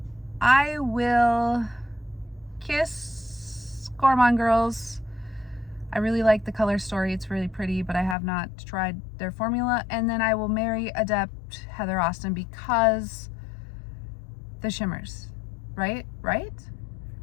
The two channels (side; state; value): right; drops out; at 8.2 s